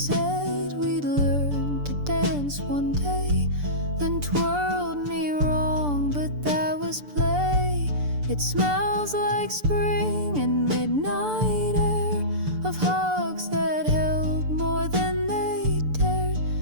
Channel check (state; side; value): late; left; 6.8 ms